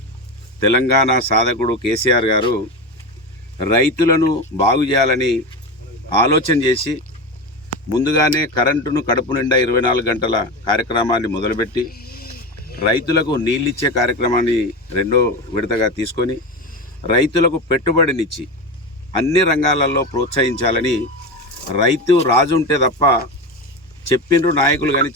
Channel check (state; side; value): normal; both; correlation 0.22